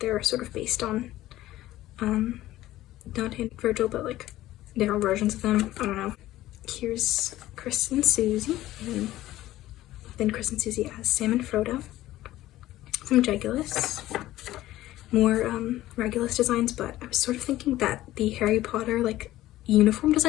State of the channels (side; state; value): right; quieter; 15.3 dB